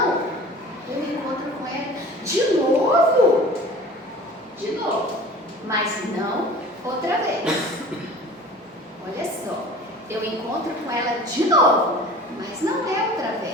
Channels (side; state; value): both; normal; correlation 0.42